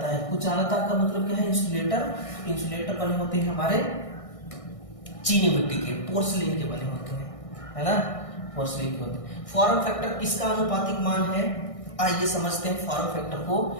है? कुचालकता का मतलब क्या है? इंसुलेटर बने होते हैं हमारे चीनी मिट्टी के, पोर्सिलेन के बने होते हैं, है ना, पोर्सिलेन के होते हैं। फॉर्म फैक्टर किसका अनुपातिक मान है? आइए समझते हैं फॉर्म फैक्टर को।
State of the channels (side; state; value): right; late; 1.6 ms